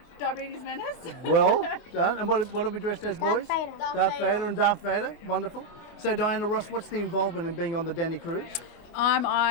Diabetes menace. Well done. And what are we dressed as, boys? Darth Vader and Darth Vader. Wonderful. So, Diana Ross, what's the involvement in being on the Danii cruise?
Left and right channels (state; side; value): late; right; 25 ms